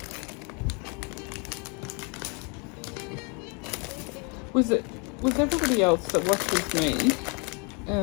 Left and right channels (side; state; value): right; quieter; 33.3 dB